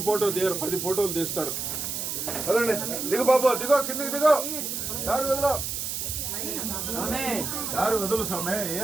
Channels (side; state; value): right; noise; hiss, 3 dB below the sound